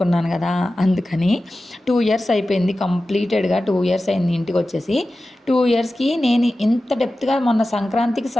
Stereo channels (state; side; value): normal; both; correlation 0.94